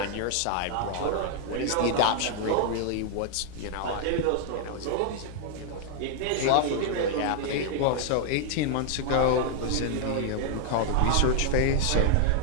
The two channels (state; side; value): different; both; correlation -0.01